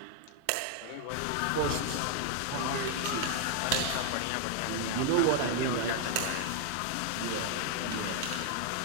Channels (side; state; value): both; different; correlation 0.00